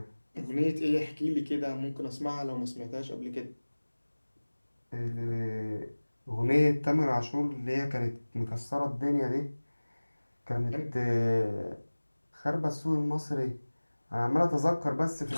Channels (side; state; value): both; inverted; correlation -1.00